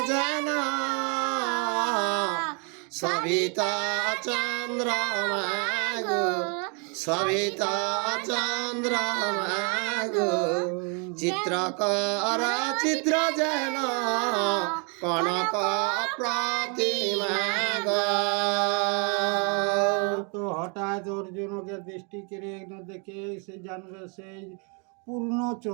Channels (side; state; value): left; quieter; 36.2 dB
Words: যেন সবিত চন্দ্রমা গো, সবিত চন্দ্রমা গো। চিত্রকর চিত্র যেন কনক প্রতিমা গো। তো হঠাৎ অর্জুনকে দৃষ্টি কেড়ে দেখে সে জানবে সেই পূর্ণ